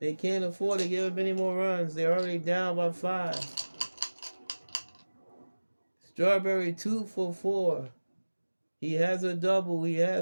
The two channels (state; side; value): inverted; both; correlation -1.00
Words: They can't afford to give up any more runs. They're already down by 5. Strawberry 2 for 4. He has a double. He